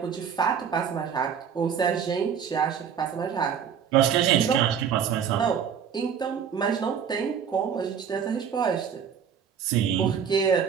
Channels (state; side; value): quieter; left; 7.6 dB